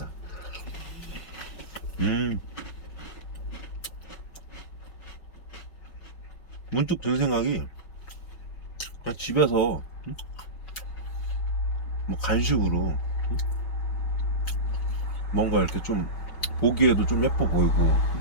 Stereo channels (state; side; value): late; right; 5.2 ms